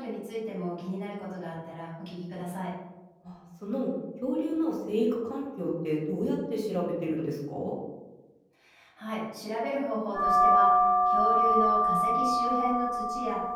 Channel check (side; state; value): both; identical; correlation 1.00